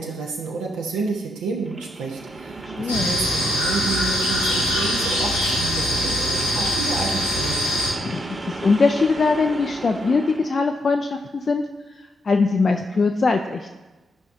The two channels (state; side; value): normal; both; correlation 0.78